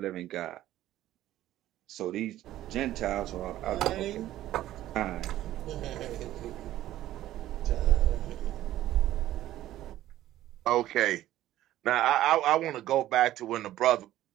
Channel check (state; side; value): quieter; left; 13.9 dB